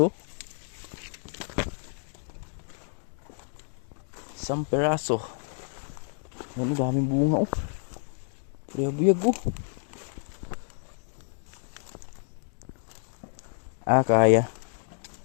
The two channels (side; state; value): right; silent; digital silence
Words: Isang piraso. Ano, daming bunga oh. Buyag oh.